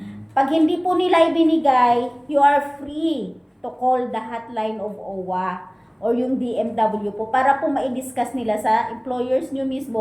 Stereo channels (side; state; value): both; identical; correlation 1.00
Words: Pag hindi po nila ibinigay, you are free to call the hotline of OWA or yung DMW po para po ma-discuss nila sa employers nyo